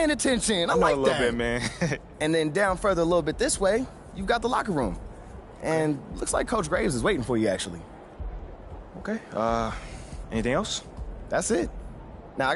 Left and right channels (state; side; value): identical; both; correlation 1.00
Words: attention. I like a little bit, man. And then down further a little bit this way, you've got the locker room. And looks like Coach Graves is waiting for you, actually. Okay. Anything else? That's it. Now, I